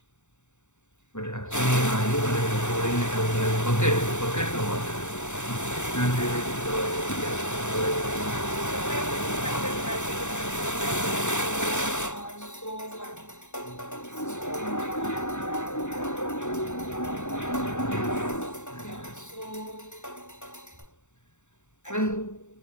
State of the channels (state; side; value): late; right; 0.84 ms